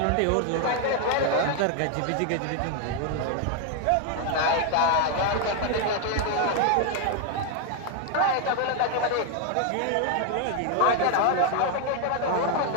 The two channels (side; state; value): both; different; correlation 0.01